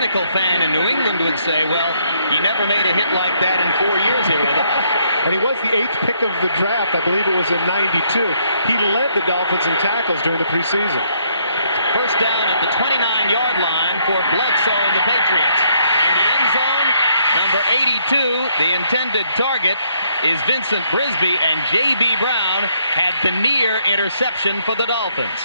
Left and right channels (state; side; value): inverted; both; correlation -0.70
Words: fan in New England would say, well, he never made a hit like that in 4 years here with us. And he was the 8th pick of the draft. I believe it was in '92. He led the Dolphins in tackles during the preseason. First down at the 29-yard line for Bledsoe and the Patriots. In the end zone, number 82, the intended target is Vincent Brisby, and J.B. Brown had the near interception for the Dolphins.